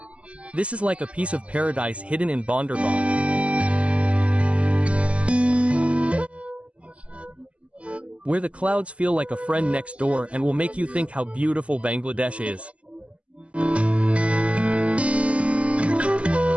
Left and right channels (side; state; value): left; late; 0.060 ms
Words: This is like a piece of paradise hidden in Bandarban. Where the clouds feel like a friend next door and will make you think how beautiful Bangladesh is.